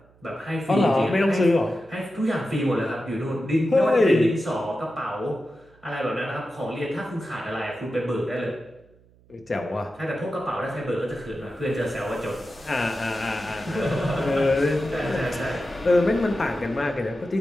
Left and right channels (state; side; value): noise; right; hum, 29 dB below the sound